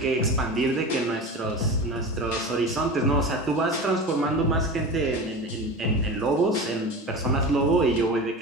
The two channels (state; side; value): normal; both; correlation 0.30